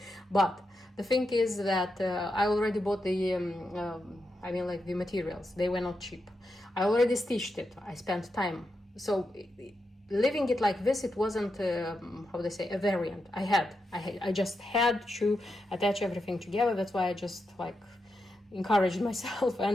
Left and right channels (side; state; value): both; normal; correlation 0.86